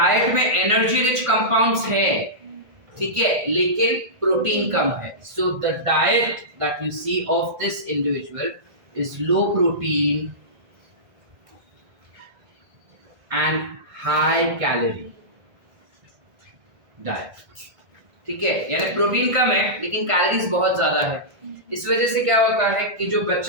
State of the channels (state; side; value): late; left; 1.5 ms